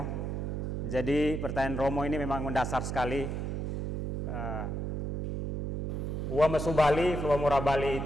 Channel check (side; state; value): right; noise; hum, 3 dB below the sound